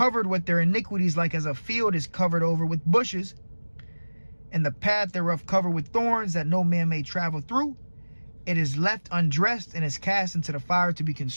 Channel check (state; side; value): inverted; both; correlation -1.00